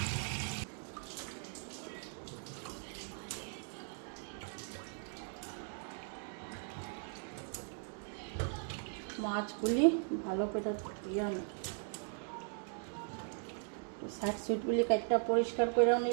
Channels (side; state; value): left; silent; 52 dB below the other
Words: মাছগুলি ভালো করে ধুয়ে আনি, সাইড সুইটগুলি কাটটা পরিষ্কার করেও